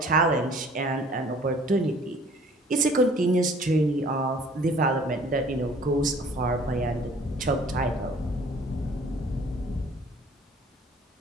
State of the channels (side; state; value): both; normal; correlation 0.53